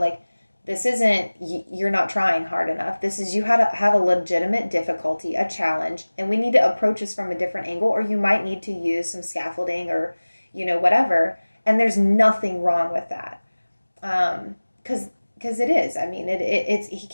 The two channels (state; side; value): inverted; both; correlation -1.00